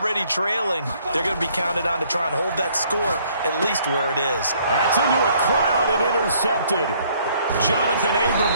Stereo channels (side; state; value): both; inverted; correlation -0.63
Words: trailing. They're going to be counted on to try and hold that score at least where it is. That's into a crowd and intercepted. Jonathan Abram